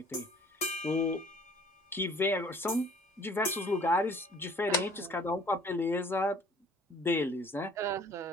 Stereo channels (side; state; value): both; normal; correlation 0.54